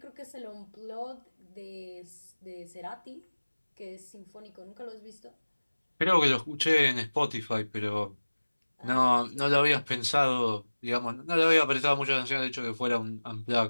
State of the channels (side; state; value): both; inverted; correlation -1.00